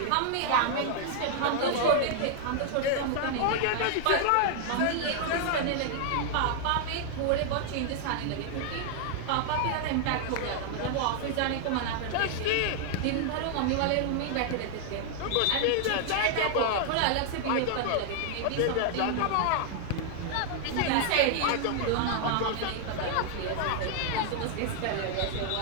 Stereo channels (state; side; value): different; both; correlation 0.00